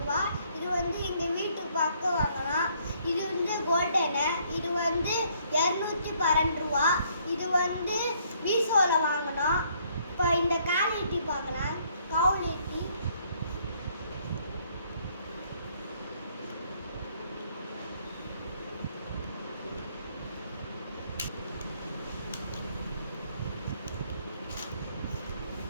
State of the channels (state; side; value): inverted; both; correlation -0.66